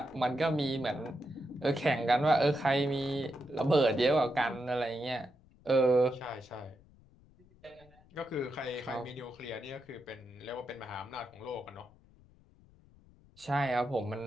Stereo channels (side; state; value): left; noise; rumble, 27 dB below the sound